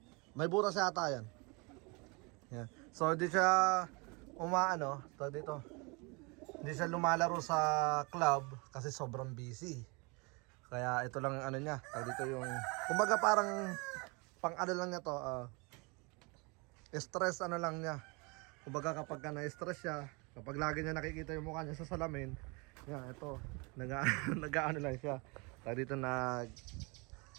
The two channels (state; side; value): quieter; left; 29.2 dB